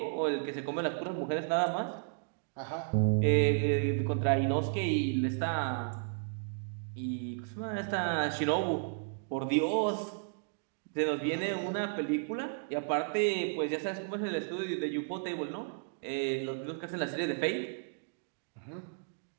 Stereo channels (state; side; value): silent; left; digital silence